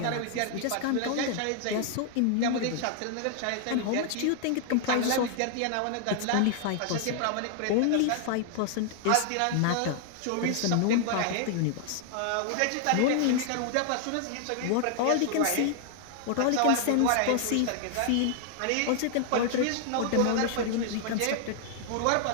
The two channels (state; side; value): different; both; correlation 0.00